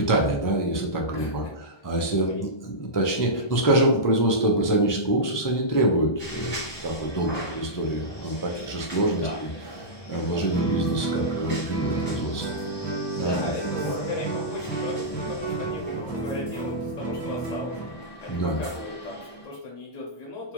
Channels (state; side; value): late; right; 1.2 ms